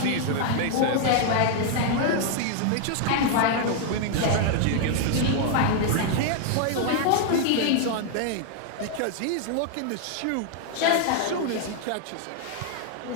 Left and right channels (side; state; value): both; different; correlation 0.00